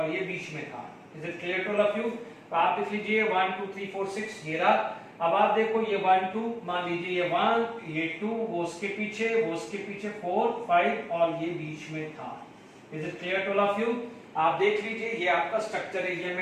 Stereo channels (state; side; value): identical; both; correlation 1.00